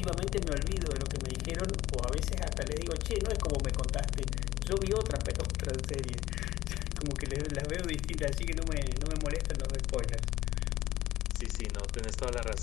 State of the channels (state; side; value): quieter; right; 15.3 dB